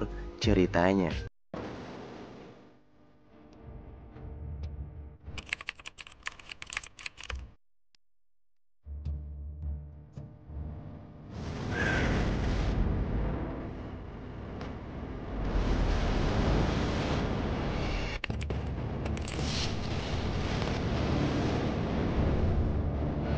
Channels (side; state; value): both; identical; correlation 1.00